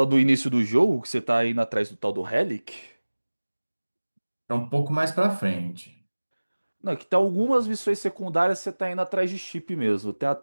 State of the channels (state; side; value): inverted; both; correlation -1.00